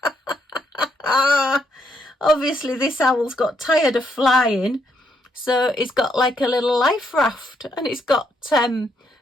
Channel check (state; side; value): normal; both; correlation 0.76